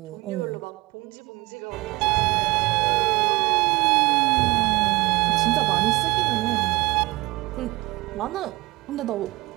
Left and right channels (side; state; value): left; quieter; 21.7 dB